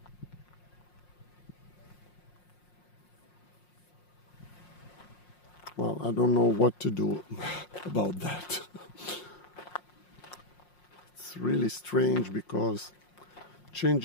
well, I don't know what to do about that. It's really strange because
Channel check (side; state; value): right; late; 5.6 ms